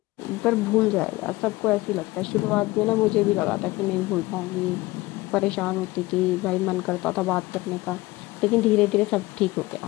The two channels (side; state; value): right; quieter; 20.0 dB